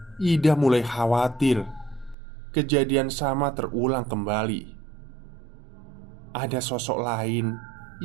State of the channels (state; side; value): drops out; left; at 2.1 s